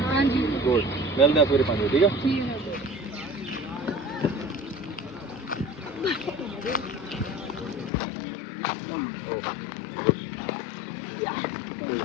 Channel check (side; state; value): right; drops out; at 7.9 s